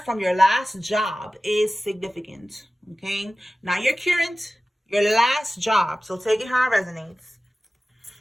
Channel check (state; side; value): normal; both; correlation 0.96